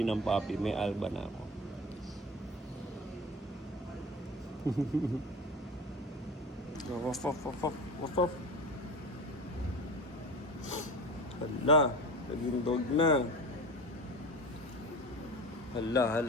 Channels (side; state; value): both; normal; correlation 0.32